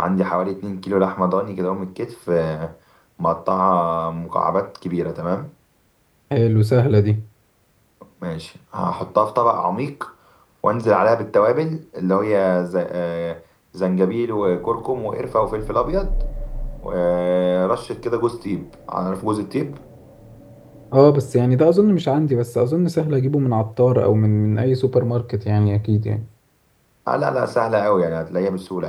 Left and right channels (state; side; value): identical; both; correlation 1.00